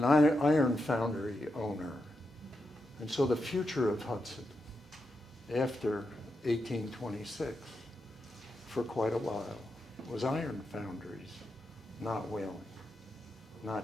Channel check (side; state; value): both; normal; correlation 0.86